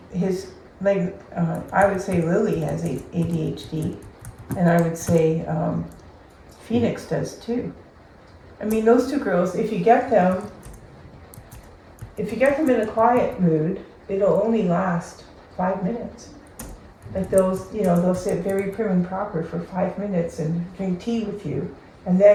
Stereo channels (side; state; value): both; identical; correlation 1.00